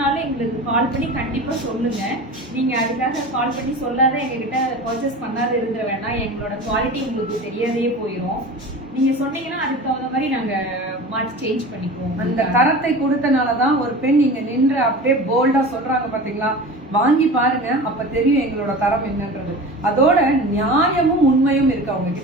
எங்களுக்கு கால் பண்ணி கண்டிப்பா சொல்லுங்க. நீங்க அதுக்காக கால் பண்ணி சொல்லாத எங்ககிட்ட பர்ச்சேஸ் பண்ணாத இருந்த வேணாம், எங்களோட குவாலிட்டி உங்களுக்கு தெரியாதே போயிடும். நீங்க சொன்னீங்கன்னா அதுக்கு தகுந்த மாதிரி நாங்க மாற்றி சேஞ்ச் பண்ணிக்குவோம். அந்த தரத்தை கொடுத்தனாலதான் ஒரு பெண் நீங்க நின்று அப்படியே போல்டா சொல்றாங்க பாத்தீங்களா, வாங்கி பாருங்க, அப்ப தெரியும் எங்களோட தரம் என்னன்றது. அதோட நியாயமும் உண்மையும் இருக்கு அவங்க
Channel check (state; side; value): normal; both; correlation 0.34